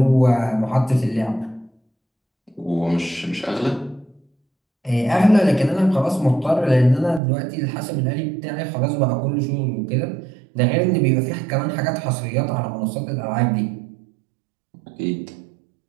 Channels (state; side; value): drops out; left; at 7.2 s